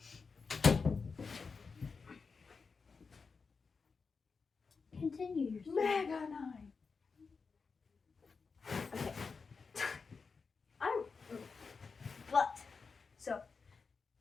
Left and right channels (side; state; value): right; quieter; 4.9 dB